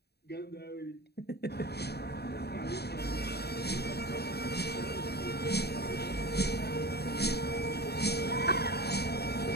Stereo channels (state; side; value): late; right; 0.47 ms